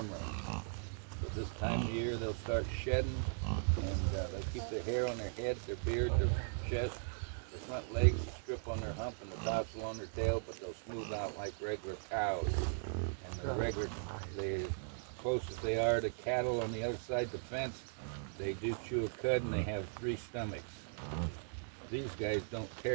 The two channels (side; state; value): left; silent; digital silence